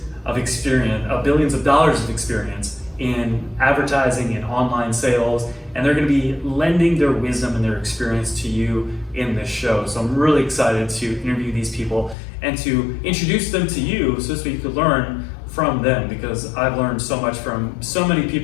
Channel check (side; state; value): right; drops out; at 12.2 s